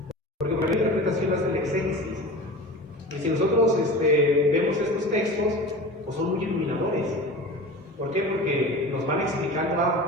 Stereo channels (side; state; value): both; normal; correlation 0.34